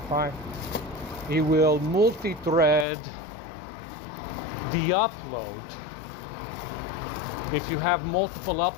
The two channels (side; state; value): right; drops out; at 2.9 s